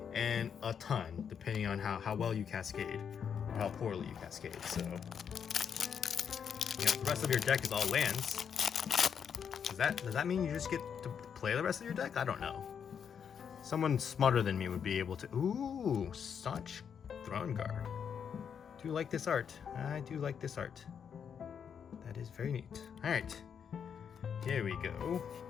and a ton, depending on how well you cascade or how poorly you cascade. So, you know, the rest of your deck is all lands. Does that mean you just get to play the rest of your deck? I don't know. Someone smarter than me would be able to. Ooh, Staunch Throne Guard. Do you like this art? I do like this art. That is very neat. All right, here we go.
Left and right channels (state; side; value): quieter; right; 7.5 dB